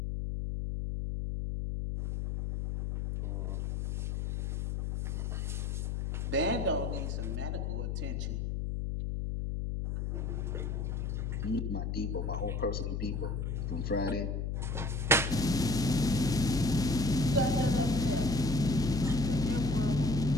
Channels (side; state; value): left; noise; hum, 1 dB below the sound